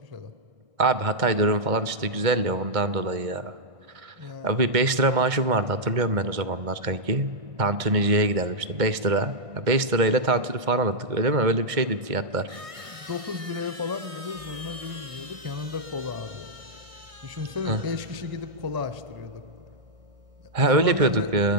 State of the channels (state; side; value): late; left; 1.6 ms